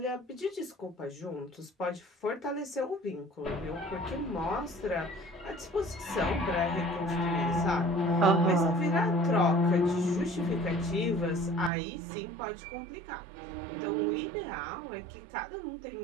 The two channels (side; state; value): left; drops out; at 11.7 s